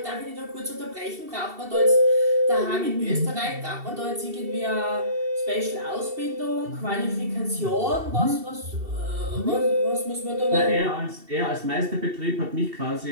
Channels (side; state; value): left; late; 2.7 ms